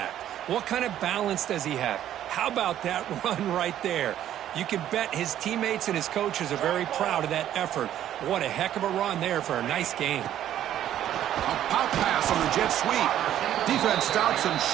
What kind of balance does he have? How about that run right there? You can bet his teammates and his coaches are very proud of that effort. What a heck of a run there for a nice gain. A pop pass on the jet sweep. Defense stops him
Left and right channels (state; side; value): quieter; left; 11.5 dB